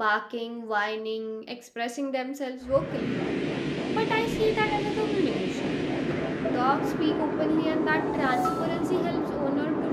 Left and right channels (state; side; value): identical; both; correlation 1.00